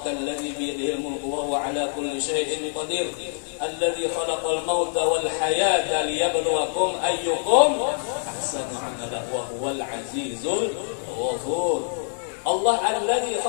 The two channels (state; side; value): silent; right; digital silence